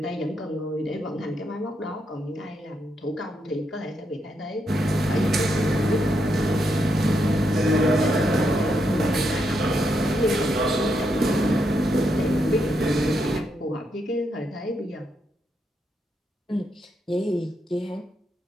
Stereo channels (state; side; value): normal; both; correlation 0.80